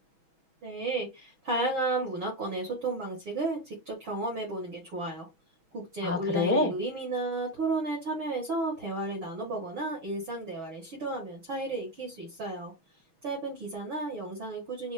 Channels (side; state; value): left; late; 6.2 ms